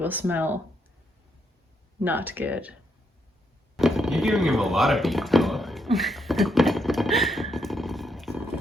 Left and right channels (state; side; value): normal; both; correlation 0.77